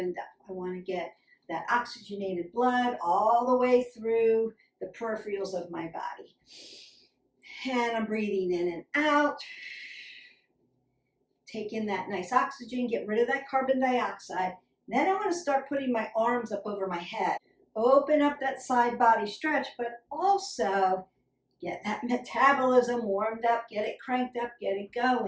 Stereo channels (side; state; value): both; identical; correlation 1.00